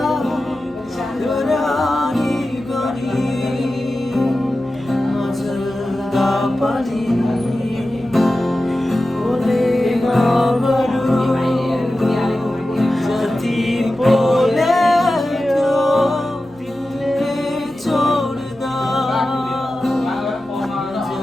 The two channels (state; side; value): noise; right; hum, 28 dB below the sound